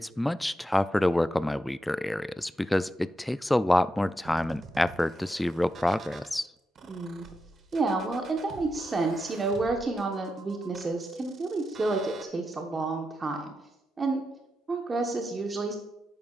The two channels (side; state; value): both; normal; correlation 0.87